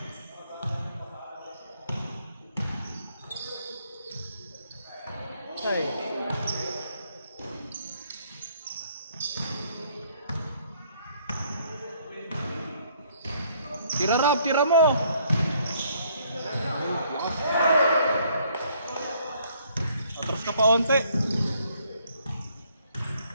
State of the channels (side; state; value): both; inverted; correlation -0.65